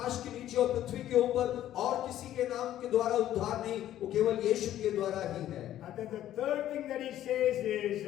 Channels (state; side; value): quieter; right; 12.4 dB